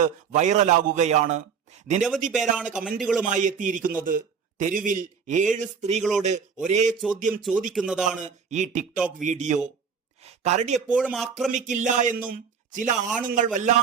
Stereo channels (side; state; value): left; quieter; 6.4 dB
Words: വൈറലാകുകയാണ്. നിരവധി പേരാണ് കമന്റുകളുമായി എത്തിയിരിക്കുന്നത്. തെരുവിൽ 7 സ്ത്രീകളോട് ഒരേ ചോദ്യം ചോദിക്കുന്നതാണ് ഈ ടിക്ടോക്ക് വീഡിയോ. കരടി എപ്പോഴും ആക്രമിക്കില്ല എന്നും ചില ആണുങ്ങൾ